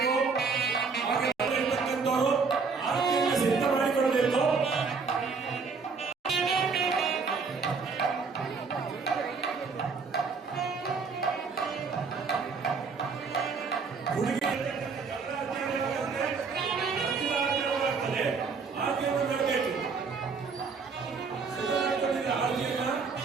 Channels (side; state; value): left; quieter; 5.0 dB